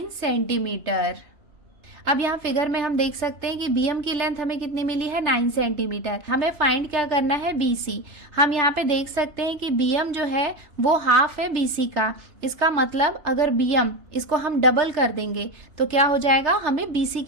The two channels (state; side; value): late; left; 3.3 ms